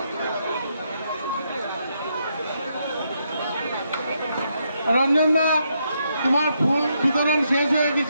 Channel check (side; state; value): both; inverted; correlation -0.78